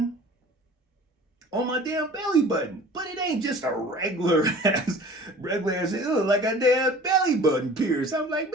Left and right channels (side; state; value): both; normal; correlation 0.44